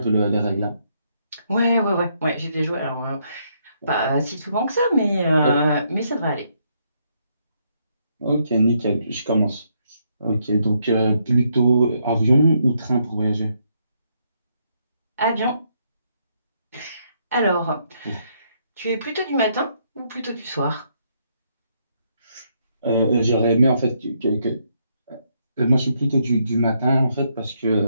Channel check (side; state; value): both; inverted; correlation -0.74